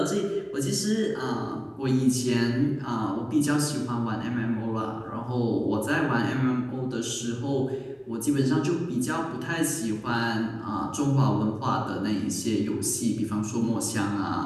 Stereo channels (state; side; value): identical; both; correlation 1.00